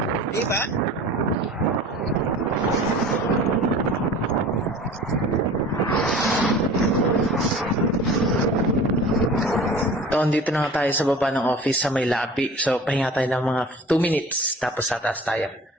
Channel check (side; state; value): both; normal; correlation 0.41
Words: diba? So andito na nga tayo sa baba ng office sa may lapi. So pahinga tayo ng mga 2 minutes tapos tataas tayo.